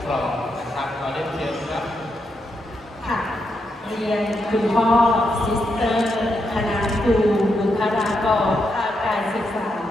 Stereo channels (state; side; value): normal; both; correlation 0.82